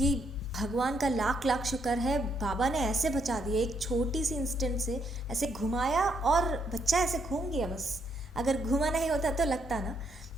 भगवान का लाख लाख शुक्र है, बाबा ने ऐसे बचा दिया, एक छोटी सी इंस्टेंट से ऐसे घुमाया और बच्चा ऐसे घूम गया बस। अगर घुमा नहीं होता तो लगता ना।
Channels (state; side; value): normal; both; correlation 0.74